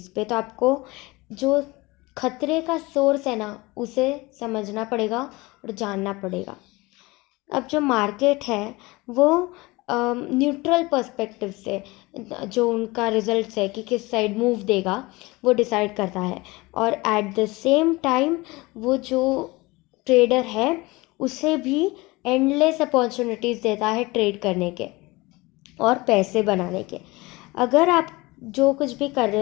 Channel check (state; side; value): quieter; right; 22.6 dB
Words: पे, तो आपको जो खतरे का सोर्स है ना उसे समझना पड़ेगा और जानना पड़ेगा। अब जो मार्केट है वो न्यूट्रल पर्सपेक्टिव से जो उनका रिजल्ट्स है कि किस साइड मूव देगा वो डिसाइड करता है। और एट द सेम टाइम वो जो ट्रेडर है उसे भी एंडलेस अपॉर्चुनिटीज़ देता है ट्रेड करने के और पैसे बनाने के। अगर आप जो कुछ भी कर